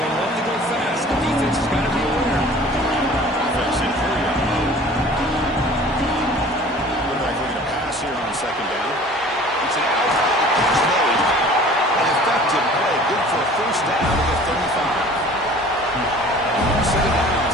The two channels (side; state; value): both; normal; correlation 0.47